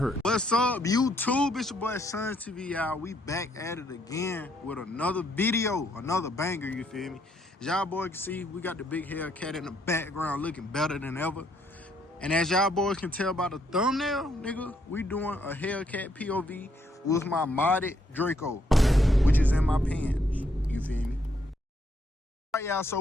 What's up, YouTube? It's your boy Sun TV, y'all. We back at it again with another video, another banger, you feel me? As y'all boys can see, we got the big Hellcat in the background looking better than ever. And as y'all boys can tell by the thumbnail, nigga, we doing a Hellcat POV with my modded Draco, which is in my pants, you feel me? All right, y'all, so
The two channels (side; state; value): both; normal; correlation 0.72